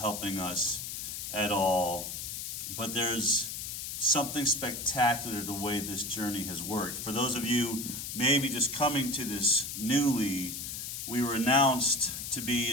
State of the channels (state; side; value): noise; left; hiss, 6 dB below the sound